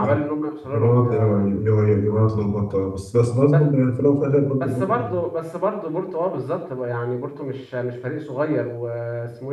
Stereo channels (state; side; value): identical; both; correlation 1.00